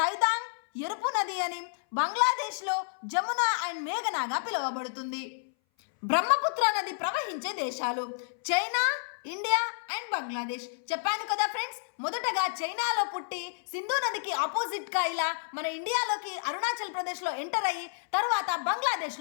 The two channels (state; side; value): silent; right; 58 dB below the other